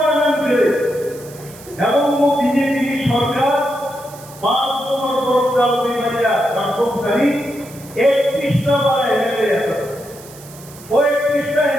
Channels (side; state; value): right; noise; hiss, 20 dB below the sound